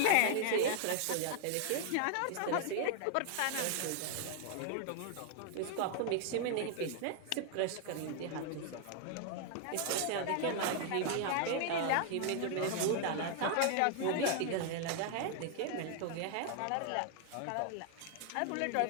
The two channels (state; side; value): different; both; correlation 0.00